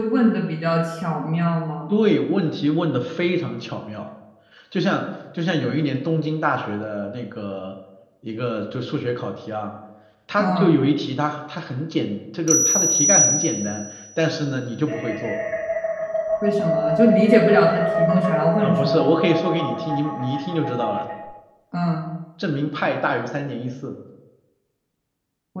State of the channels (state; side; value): identical; both; correlation 1.00